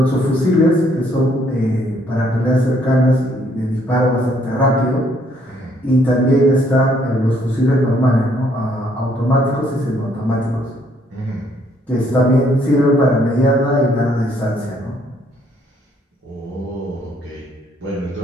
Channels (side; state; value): both; normal; correlation 0.67